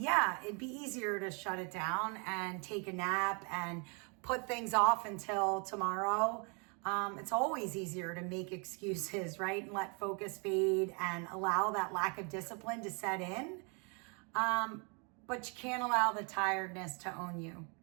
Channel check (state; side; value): quieter; left; 34.9 dB